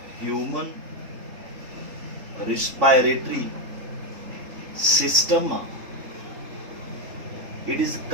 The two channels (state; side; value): late; left; 3.6 ms